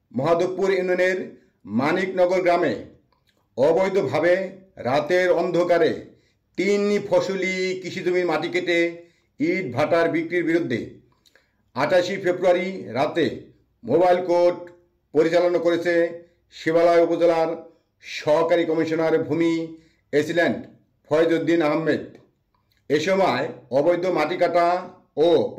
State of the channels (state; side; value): identical; both; correlation 1.00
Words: মহাদেবপুর ইউনিয়নের মানিকনগর গ্রামে অবৈধভাবে রাতের অন্ধকারে 3 ফসলি কৃষিজমির মাটি কেটে ইট ভাটার বিক্রির বিরুদ্ধে 28 ফেব্রুয়ারি রাতে মোবাইল কোর্ট পরিচালনা করেছে শিবালয় উপজেলার সহকারী কমিশনার ভূমি এসিল্যান্ড ফয়েজউদ্দিন আহমেদ। এ সময় অবৈধ মাটি কাটা ও